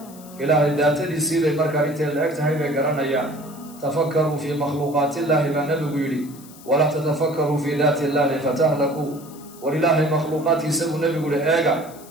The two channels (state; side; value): noise; left; hiss, 21 dB below the sound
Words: ilaahay daatadiisii bay markaa intay la eg tahay bay garanayaan tafakkaruu fii makhluuqaati illaahi baa nabigu yidhi walaa tatafakkaruu fii daati illaahi fatahlakuu war ilaahay makhluuqaadkiisa buu nebigu yihi eega